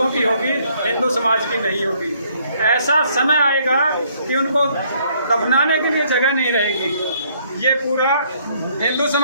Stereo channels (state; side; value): inverted; both; correlation -0.66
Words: की होगी, हिंदू समाज की नहीं होगी। ऐसा समय आएगा कि उनको दफनाने के लिए जगह नहीं रहेगी। ये पूरा हिंदू